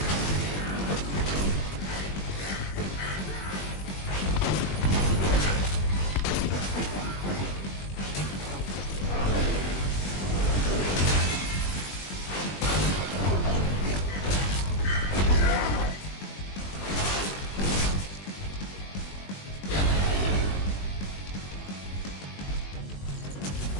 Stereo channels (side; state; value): right; late; 21 ms